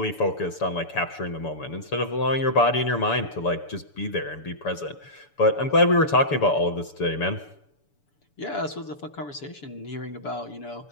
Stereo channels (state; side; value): late; right; 7.0 ms